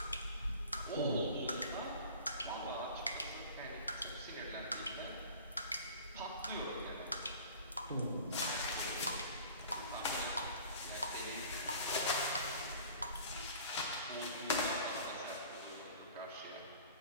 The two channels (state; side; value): inverted; both; correlation -0.45